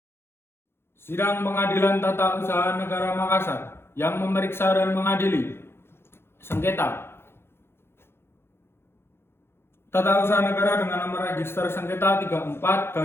Sidang Pengadilan Tata Usaha Negara Makassar yang memeriksa dan mengadili sengketa Tata Usaha Negara dengan nomor register sengketa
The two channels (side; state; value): right; late; 0.12 ms